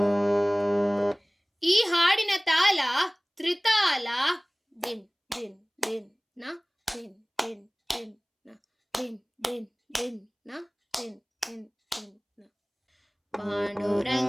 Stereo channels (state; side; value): identical; both; correlation 1.00